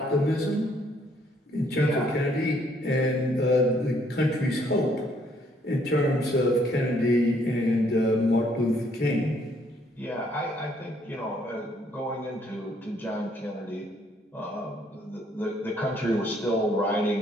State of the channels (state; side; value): normal; both; correlation 0.67